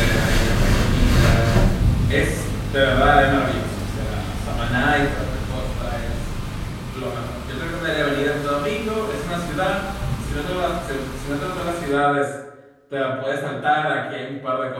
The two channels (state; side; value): identical; both; correlation 1.00